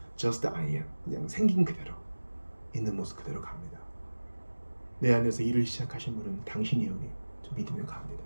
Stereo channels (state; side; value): inverted; both; correlation -1.00